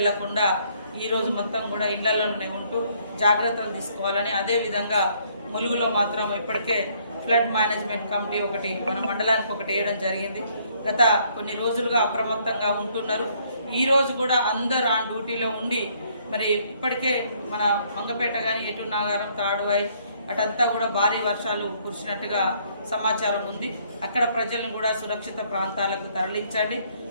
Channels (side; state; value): both; inverted; correlation -0.66